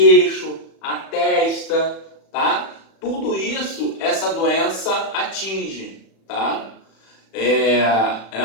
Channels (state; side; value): late; right; 36 ms